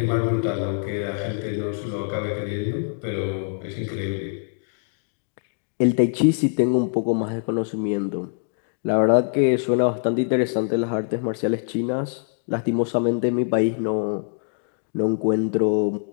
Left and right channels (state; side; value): silent; right; digital silence